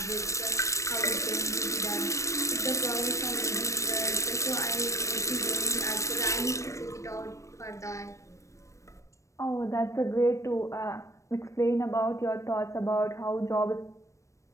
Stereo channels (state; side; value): late; right; 0.15 ms